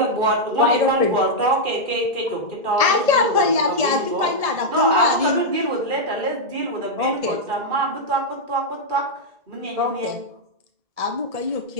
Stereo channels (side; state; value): left; late; 1.7 ms